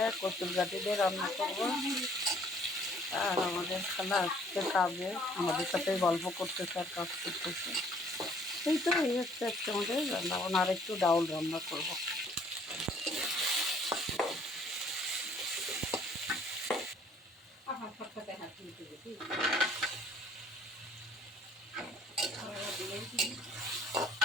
কচুর গাঠি দিয়ে রান্না করবো। আর আমাদের খালা আজকে কাজে আমাদের সাথে গল্প করতেছে আর কাজ করতেছে। এই তো এই হচ্ছে আজকে আমাদের রান্নাবান্না। আর একটু ডাউল রান্না করবো।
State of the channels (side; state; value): both; normal; correlation 0.59